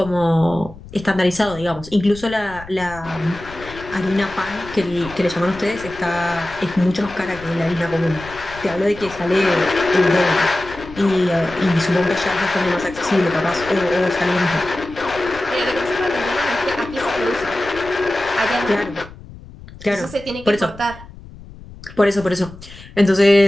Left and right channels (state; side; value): noise; left; rumble, 17 dB below the sound